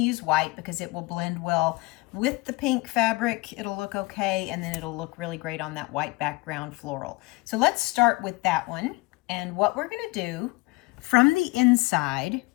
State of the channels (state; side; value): quieter; right; 23.5 dB